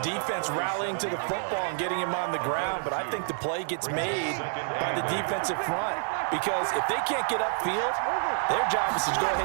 rallying to the football and getting him on the ground, but I think the play gets made by the defensive front because if they can't get upfield, their job is to go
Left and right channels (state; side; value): silent; left; 55 dB below the other